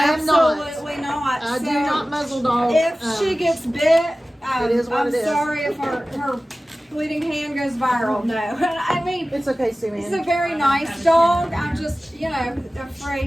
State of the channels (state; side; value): normal; both; correlation 0.96